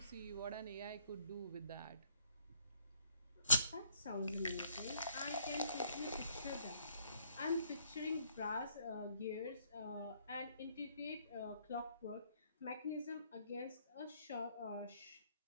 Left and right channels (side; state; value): both; inverted; correlation -0.64